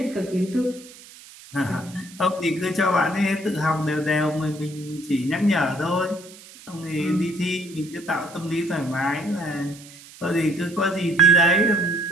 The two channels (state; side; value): noise; right; hiss, 20 dB below the sound